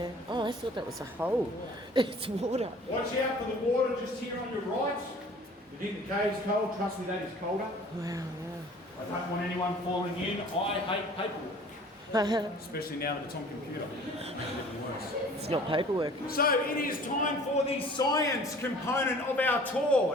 Oh, I thought that was a hole. It's water. Watch out for the water just here on your right. You think the cave's cold? Trust me, that is colder. Wow, I don't want anyone falling in. I hate paperwork. wow. Especially now that it's on computer. It's not paperwork. So it is time for the science component of our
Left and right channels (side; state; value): both; normal; correlation 0.49